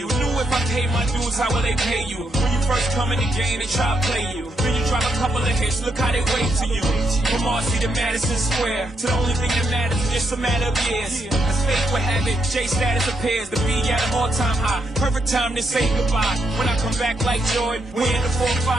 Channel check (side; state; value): both; normal; correlation 0.78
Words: Knew if I paid my dues, how will they pay you? When you first come in the game, they try to play you. Then you drop a couple of hits, look how they wait to you. From Marcy to Madison Square, to the only thing that matters is just a matter of years. As fate would have it, J status appears to be at an all-time high. Perfect time to say goodbye. When I come back like Jordan, we in the